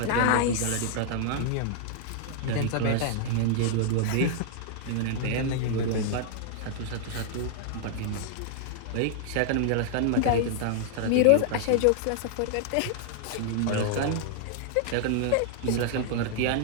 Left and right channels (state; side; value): different; both; correlation -0.01